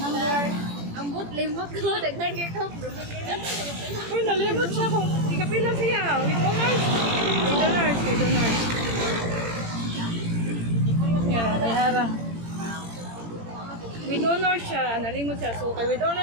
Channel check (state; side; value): late; left; 18 ms